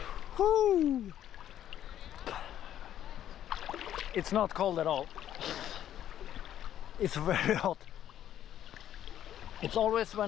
Woo! It's not cold at all. It's very hot. It's always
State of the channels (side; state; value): right; quieter; 11.1 dB